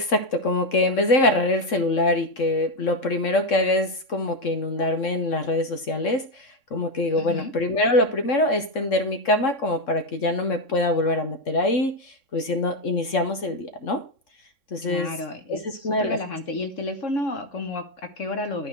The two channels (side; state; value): right; late; 3.6 ms